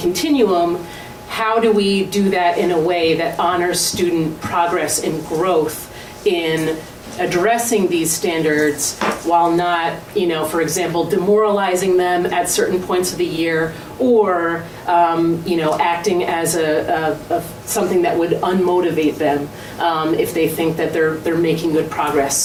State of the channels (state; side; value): identical; both; correlation 1.00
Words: How do we do that in a way that honors student progress and growth in addressing these standards while not, for example, demoralizing them at certain points of the year or, acting as a something that would unmotivate them if they think that they're making good progress.